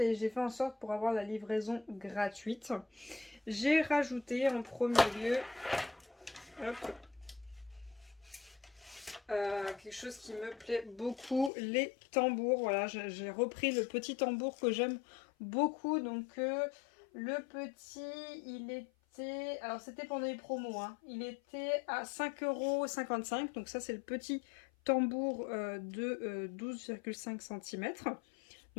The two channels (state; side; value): drops out; right; at 11.5 s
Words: j'ai fait en sorte pour avoir la livraison gratuite. J'ai rajouté en premier lieu hop, quelque chose qui me plaît beaucoup, les tambours. Voilà, j'ai repris le petit tambour que j'aime beaucoup. Donc le petit, il était... Alors c'était pendant les promos, hein. Il était à 5,55 €. Donc ça c'est le petit tambour de 12,5 cm.